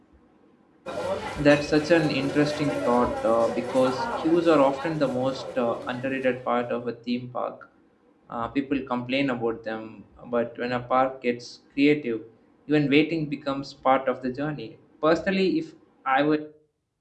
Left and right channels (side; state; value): both; identical; correlation 1.00